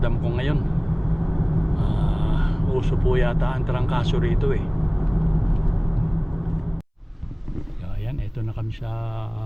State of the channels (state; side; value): identical; both; correlation 1.00